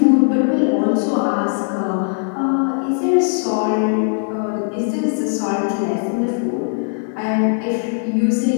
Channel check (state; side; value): silent; right; 67 dB below the other